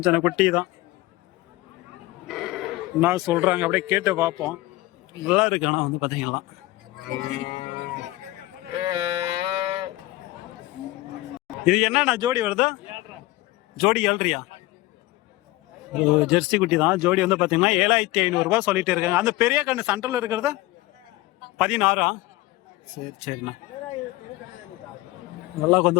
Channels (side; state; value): right; quieter; 19.0 dB